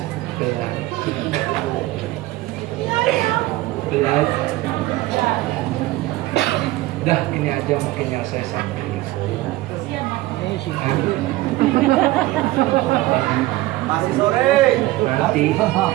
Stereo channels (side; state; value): left; quieter; 17.9 dB